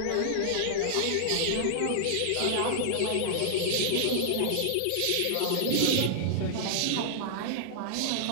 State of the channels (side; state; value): both; different; correlation -0.01